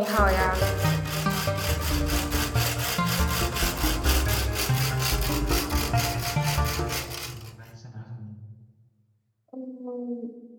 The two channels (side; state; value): both; identical; correlation 1.00